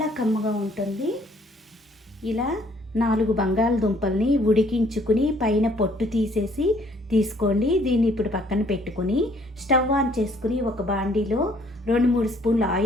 కమ్మగా ఉంటుంది. ఇలా 4 బంగాళదుంపల్ని ఉడికించుకుని పైన పొట్టు తీసుకోండి. దీన్ని ఇప్పుడు పక్కన పెట్టుకుని స్టవ్ ఆన్ చేసుకుని ఒక బాండీలో 2-3 స్పూన్ల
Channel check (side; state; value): both; normal; correlation 0.62